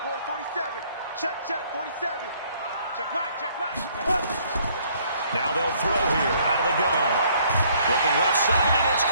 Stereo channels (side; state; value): both; inverted; correlation -0.63